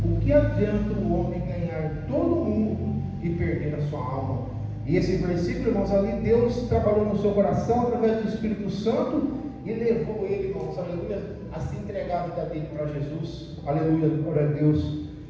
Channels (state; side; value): identical; both; correlation 1.00